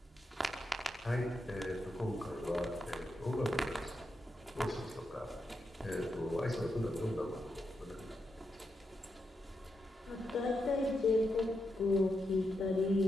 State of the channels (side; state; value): both; normal; correlation 0.85